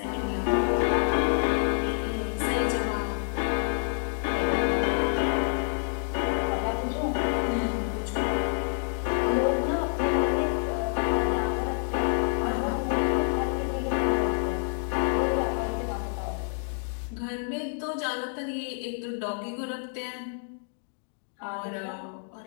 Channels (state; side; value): silent; right; digital silence